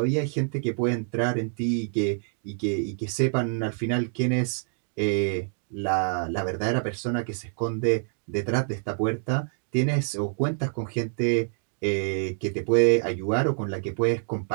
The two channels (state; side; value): silent; left; digital silence